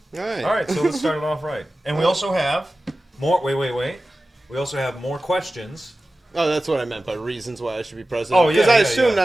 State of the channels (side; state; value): both; normal; correlation 0.95